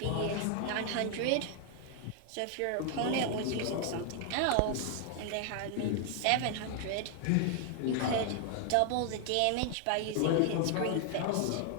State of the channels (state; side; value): different; both; correlation 0.00